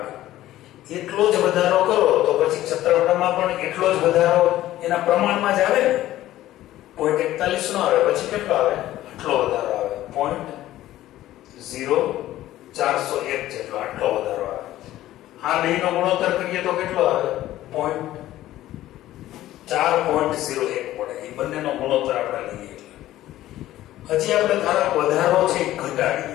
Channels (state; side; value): quieter; right; 14.5 dB